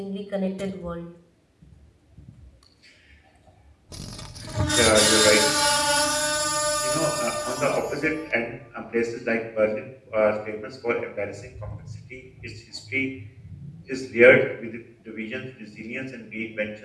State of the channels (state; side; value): identical; both; correlation 1.00